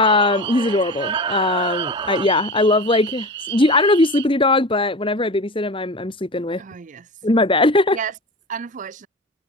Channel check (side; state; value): both; normal; correlation 0.29